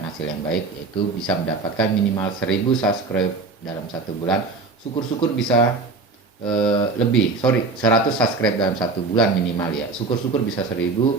hasil yang baik, yaitu bisa mendapatkan minimal 1000 subscribe dalam 1 bulan. Syukur-syukur bisa 100 subscribe dalam 1 bulan minimal ya. Syukur-syukur bisa 1000,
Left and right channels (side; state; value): left; quieter; 4.0 dB